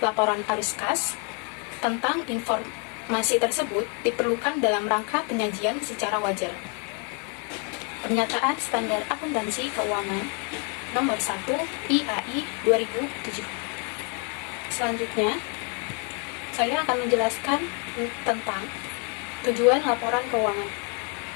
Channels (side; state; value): right; quieter; 37.5 dB